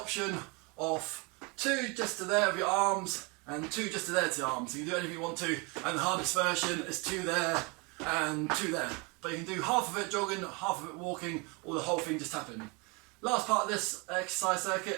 option of 2 just to there of your arms and 2 just to there to your arms. So you can do anything you want to, and the hardest version is 2 there and 2 there. But you can do half of it jogging, half of it walking, or the whole thing just tapping. Last part of this exercise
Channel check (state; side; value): quieter; left; 29.8 dB